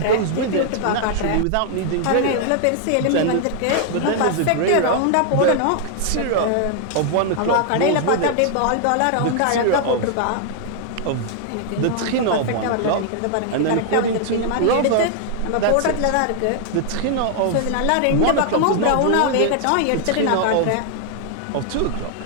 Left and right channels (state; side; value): different; both; correlation 0.00